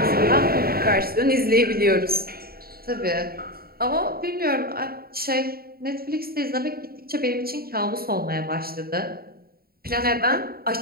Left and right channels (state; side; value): late; left; 0.44 ms